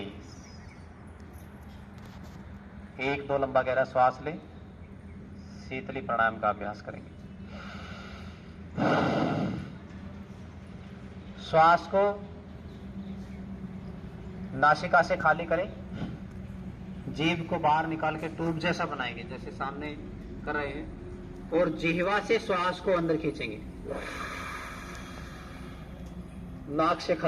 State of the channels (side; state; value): both; identical; correlation 1.00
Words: 1-2 लंबा गहरा श्वास लें। शीतली प्राणायाम का अभ्यास करेंगे। श्वास को नासिका से खाली करें। जीभ को बाहर निकाल के ट्यूब जैसा बनाएंगे, जैसे सामने कर रहे हैं, और जिह्वा से श्वास को अंदर खींचेंगे। नाक से